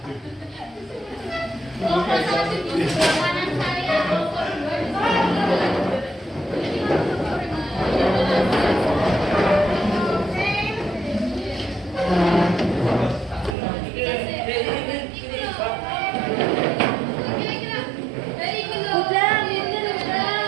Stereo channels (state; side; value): drops out; left; at 13.6 s